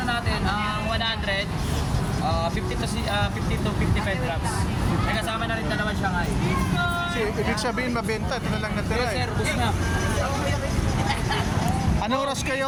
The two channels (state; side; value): identical; both; correlation 1.00